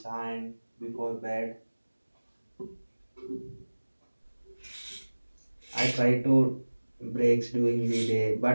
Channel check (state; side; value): inverted; both; correlation -1.00